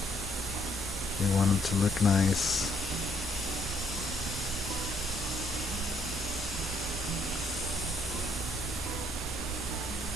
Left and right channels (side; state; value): both; normal; correlation 0.70